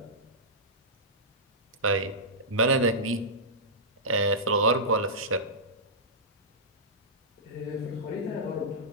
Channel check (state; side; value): normal; both; correlation -0.15